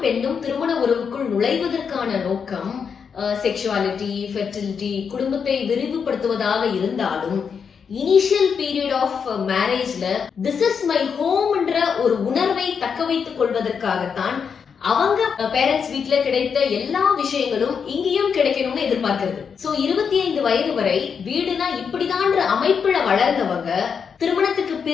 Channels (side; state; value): right; quieter; 6.5 dB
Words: பெண்ணும் திருமண உறவுக்குள் நுழைவதற்கான நோக்கம் செக்ஷுவாலிட்டி, ஃபெர்டிலிட்டி, குடும்பத்தை விரிவுபடுத்துவதாக இருந்தாலும் இனிஷியல் பீரியட் ஆஃப் மேரேஜ்ல திஸ் இஸ் மை ஹோம்ன்ற ஒரு உணர்வை தக்க வைத்துக் கொள்வதற்காகத்தான் அவங்க பேரண்ட்ஸ் வீட்ல கிடைத்த எல்லா விஷயங்களும் இங்கேயும் கிடைக்கணும்னு எதிர்பார்க்கிறது. சோ 25 வயது வரை வீடுனா இப்படிதான்ற அமைப்புல வளர்ந்தவங்க திருமணத்துக்கு